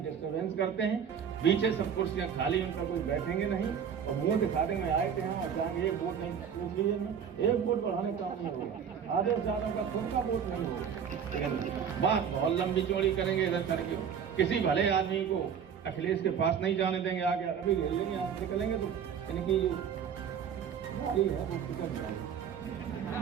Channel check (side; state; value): left; quieter; 7.7 dB